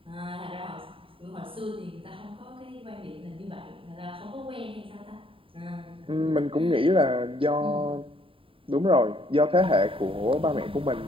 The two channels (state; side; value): late; left; 0.26 ms